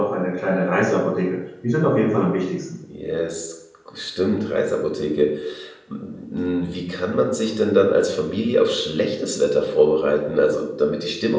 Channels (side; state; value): both; identical; correlation 1.00